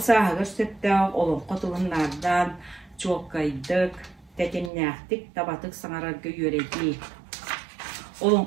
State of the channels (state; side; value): drops out; left; at 4.7 s